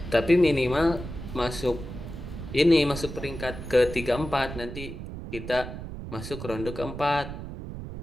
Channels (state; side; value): noise; right; rumble, 9 dB below the sound